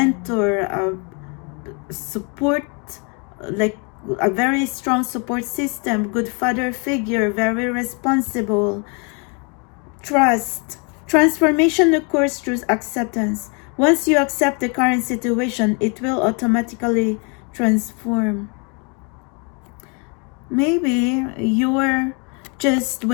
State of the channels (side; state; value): right; quieter; 34.6 dB